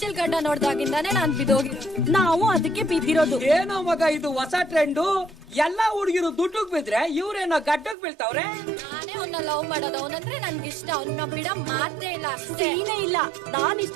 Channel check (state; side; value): drops out; left; at 8.0 s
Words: ಗಡ್ಡ ನೋಡ್ದಾಗಿಂದಾನೆ ನಾನ್ ಬಿದ್ದೋಗಿರೋದು. ನಾವು ಅದಕ್ಕೆ ಬಿದ್ದಿರೋದು. ಏನೋ ಮಗ ಇದು ಹೊಸ ಟ್ರೆಂಡು. ಎಲ್ಲಾ ಹುಡುಗಿರು ದುಡ್ಡುಗ್ ಬಿದ್ರೆ ಇವ್ರೇನೋ ಗಡ್ಡಗ್ ಬೀಳ್ತಾವ್ರೆ. ನಾನೇ ಅವ್ನ ಲವ್ ಮಾಡೋದು. ಅವನಂದ್ರೆ ನನ್ಗಿಷ್ಟ. ಅವ್ನ ಬಿಡ ಮಾತೇ ಇಲ್ಲ. ಸೀನೇ ಇಲ್ಲ. ನಾನ್